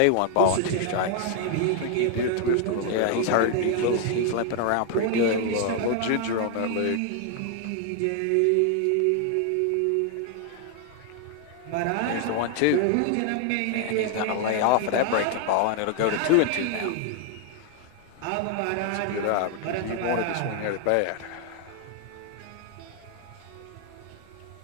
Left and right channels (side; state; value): both; different; correlation 0.00